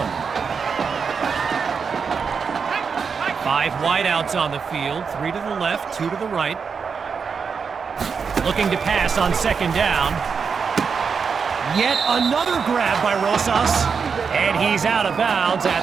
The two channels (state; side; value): quieter; left; 5.8 dB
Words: 5 wideouts on the field, 3 to the left, 2 to the right. Looking to pass on 2nd down. Yet another grab by Rosas, and he's out of bounds